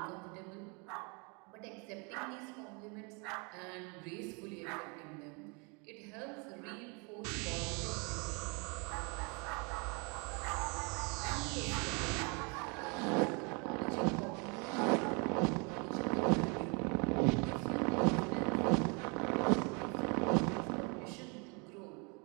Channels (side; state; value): left; quieter; 32.4 dB